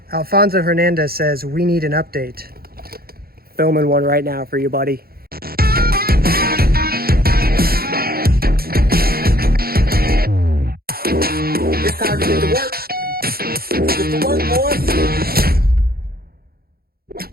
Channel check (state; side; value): late; left; 0.44 ms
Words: Alfonso Hernandez says, we need an update. Filming one right now for you, buddy. It's time to get to work. Get to work, boys.